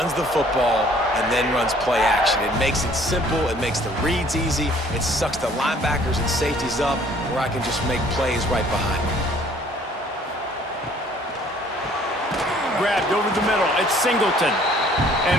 the football and then runs play action. It makes it simple. It makes the reads easy. It sucks the linebackers and safeties up where I can just make plays right behind me. Grabbed over the middle. It's Singleton.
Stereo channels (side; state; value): both; normal; correlation 0.57